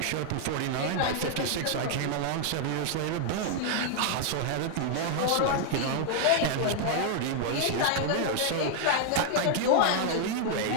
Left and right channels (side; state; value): both; different; correlation 0.00